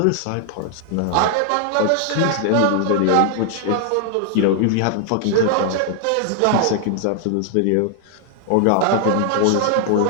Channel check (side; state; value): both; different; correlation 0.00